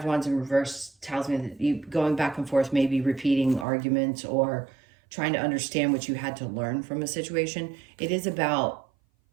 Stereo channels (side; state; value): left; drops out; at 3.7 s